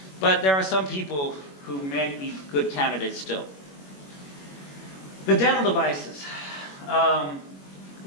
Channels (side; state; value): right; late; 21 ms